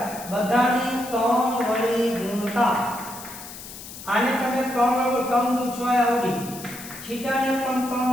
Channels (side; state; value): left; noise; hiss, 13 dB below the sound